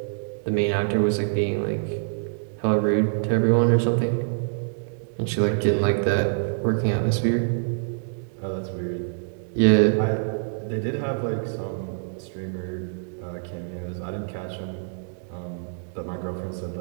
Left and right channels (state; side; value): silent; left; 61 dB below the other